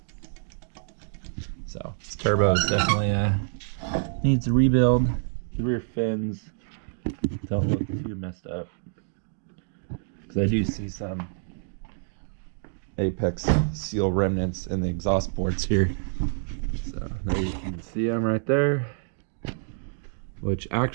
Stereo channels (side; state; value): left; silent; digital silence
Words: So this turbo is definitely needs a rebuild. The rear fins don't look too messed up, because I do see some apex seal remnants in the exhaust ports here. So there you can see them right there, which